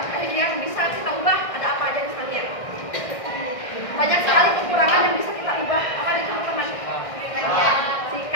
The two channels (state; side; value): late; right; 1.6 ms